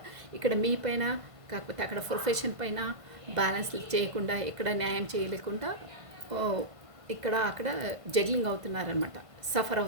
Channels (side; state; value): left; late; 1.5 ms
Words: ఇక్కడ మీ పైన, కాకపోతే అక్కడ ప్రొఫెషన్ పైన బ్యాలెన్స్ చేయకుండా, ఇక్కడ న్యాయం చేయలేకుండా ఇక్కడ అక్కడ జగ్లింగ్ అవుతున్నారనమాట, సఫర్